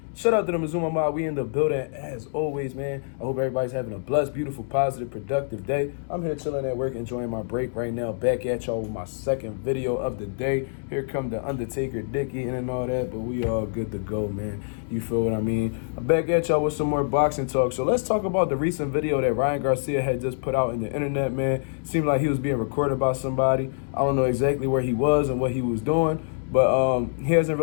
Shout out to the Mazuma Mob. We in the building as always, man. I hope everybody's having a blessed, beautiful, positive, productive day. I'm here chilling at work, enjoying my break right now. Back at y'all with my second video of the day. Here come the Undertaker, Dick eating and all that, but we all good to go, man. You feel what I mean? I'm back at y'all with some more boxing talk. So let's talk about the recent video that Ryan Garcia had just put out in the internet, man. Seemed like he was being recorded by somebody. I don't know exactly where he was and what he was doing. But he hasn't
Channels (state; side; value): silent; right; digital silence